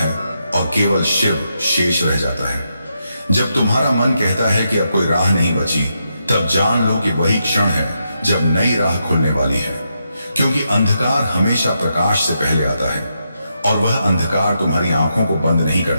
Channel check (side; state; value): both; inverted; correlation -0.82